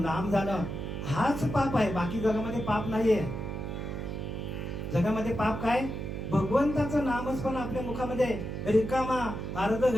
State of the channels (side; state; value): right; noise; hum, 5 dB below the sound